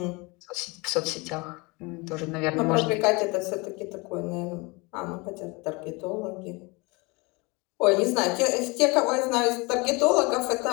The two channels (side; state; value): right; quieter; 26.6 dB